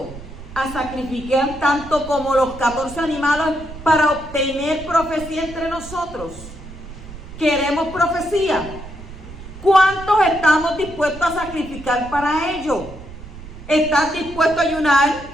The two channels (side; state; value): right; noise; rumble, 14 dB below the sound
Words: a sacrificar tanto como los 14 animales para obtener profecía entre nosotros? ¿Queremos profecía? ¿Cuántos estamos dispuestos a sacrificar para ello? ¿Estás dispuesto a ayunar?